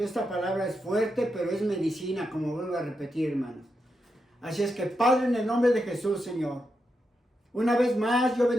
esta palabra es fuerte, pero es medicina, como vuelvo a repetir, hermanos. Así es que, Padre, en el nombre de Jesús, Señor, una vez más yo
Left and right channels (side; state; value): both; normal; correlation 0.86